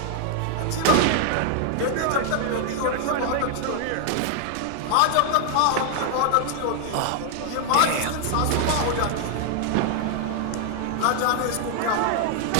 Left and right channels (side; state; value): both; different; correlation 0.00